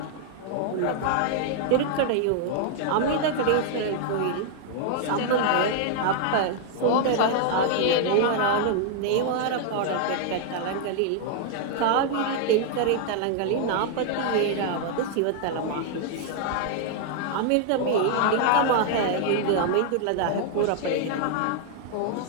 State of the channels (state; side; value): different; both; correlation -0.01